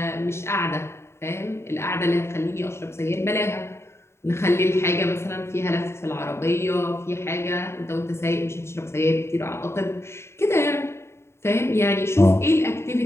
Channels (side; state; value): right; late; 0.13 ms